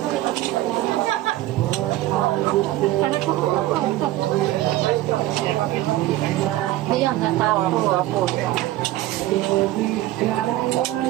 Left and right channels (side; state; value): left; quieter; 15.7 dB